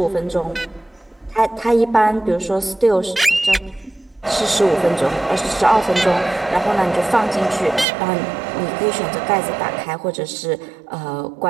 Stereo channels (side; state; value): left; drops out; at 7.9 s